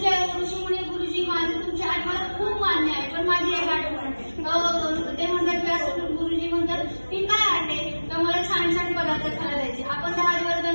ऋषीमुनी गुरुजी माझे तुमची आठ मला खूप मान्य आहे, पण माझी एक आठवण ते म्हणतात व्यास गुरुजी म्हणतात की काय आटे तर मला छान छान पदार्थ खायला द्यायचे. आपण 10 दिवस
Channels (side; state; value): both; inverted; correlation -1.00